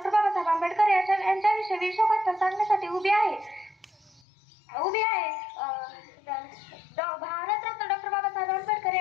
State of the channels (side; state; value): right; drops out; at 4.2 s